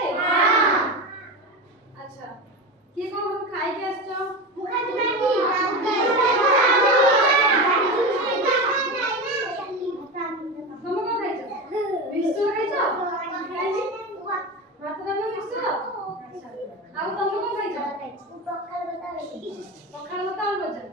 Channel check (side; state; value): both; normal; correlation 0.23